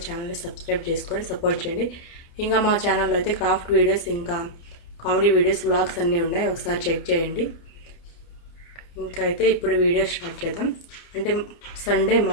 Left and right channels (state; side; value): late; right; 29 ms